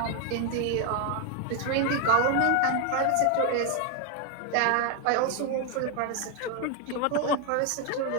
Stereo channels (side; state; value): both; different; correlation 0.01